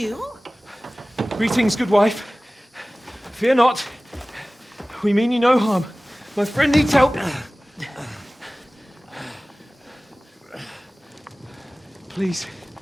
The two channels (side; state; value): both; normal; correlation 0.98